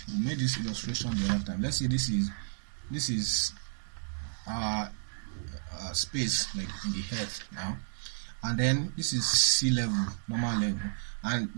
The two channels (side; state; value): left; silent; digital silence